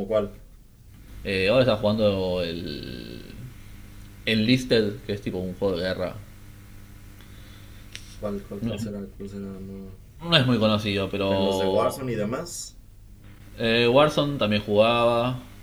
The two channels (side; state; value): both; identical; correlation 1.00